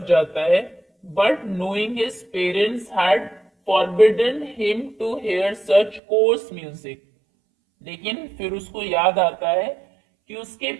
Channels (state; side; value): drops out; left; at 6.0 s